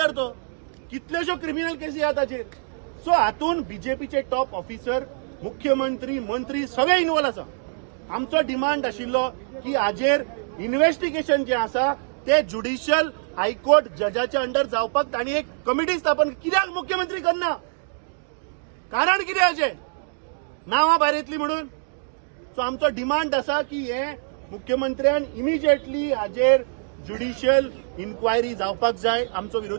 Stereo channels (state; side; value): silent; left; digital silence